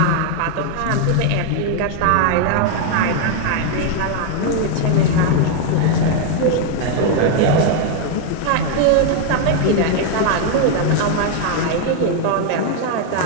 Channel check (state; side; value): different; both; correlation 0.00